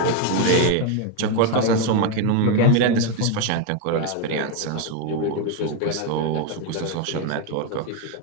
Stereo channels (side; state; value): both; different; correlation 0.02